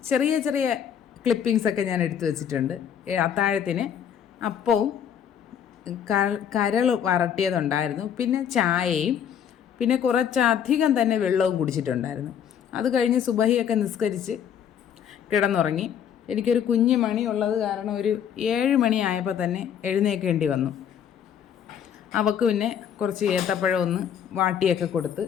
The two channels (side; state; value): right; quieter; 8.7 dB